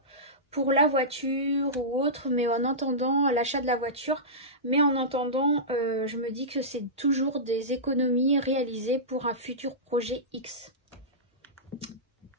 pour la voiture ou autre, mais en attendant l'achat de la voiture. Mais en attendant, je me dis que c'est toujours des économies réalisées pour un futur projet X.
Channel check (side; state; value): both; normal; correlation -0.17